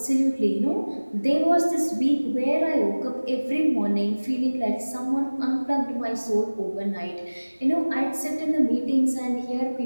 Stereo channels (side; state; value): both; inverted; correlation -1.00